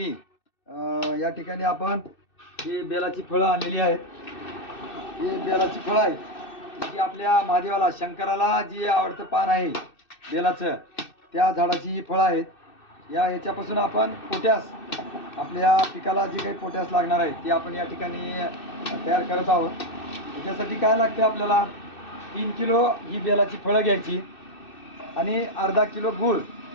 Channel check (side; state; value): right; late; 2.6 ms